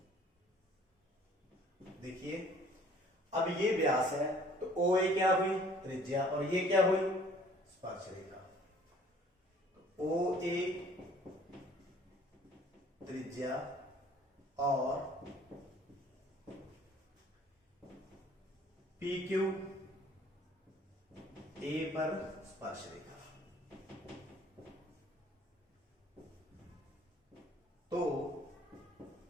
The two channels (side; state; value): both; normal; correlation 0.55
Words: देखिए अब ये व्यास है तो OA क्या हुई, त्रिज्या, और ये क्या हुई, स्पर्श रेखा। तो OA त्रिज्या और PQ A पर स्पर्श रेखा। तो